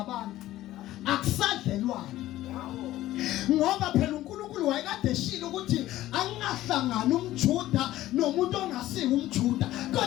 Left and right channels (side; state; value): right; quieter; 15.0 dB